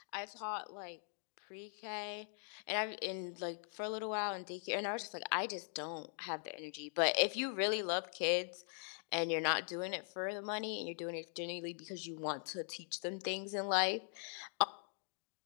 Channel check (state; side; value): silent; right; 50 dB below the other